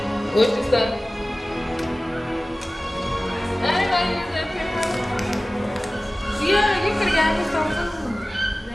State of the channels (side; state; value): both; normal; correlation 0.97